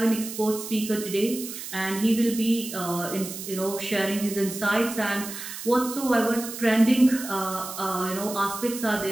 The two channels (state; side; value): noise; right; hiss, 9 dB below the sound